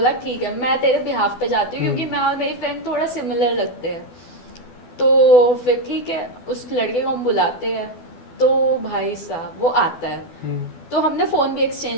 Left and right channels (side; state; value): right; late; 12 ms